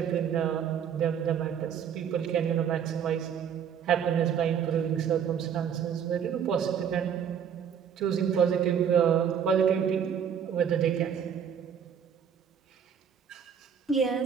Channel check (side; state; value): left; quieter; 8.0 dB